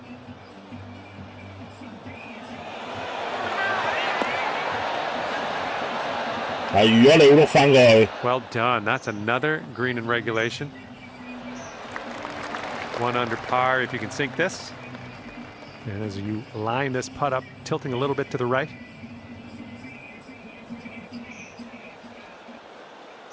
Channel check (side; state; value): both; identical; correlation 1.00